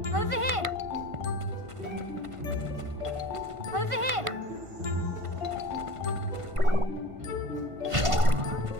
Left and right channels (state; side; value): late; left; 1.5 ms